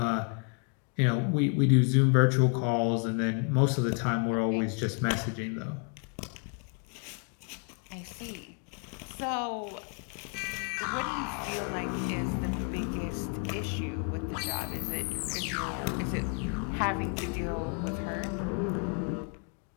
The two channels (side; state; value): right; quieter; 39.3 dB